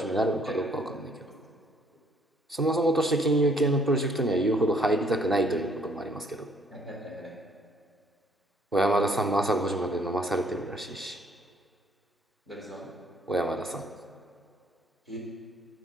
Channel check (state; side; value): normal; both; correlation 0.63